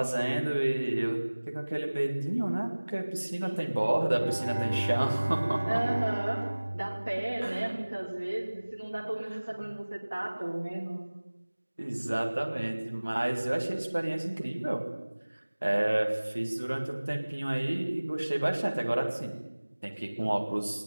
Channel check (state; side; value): inverted; both; correlation -1.00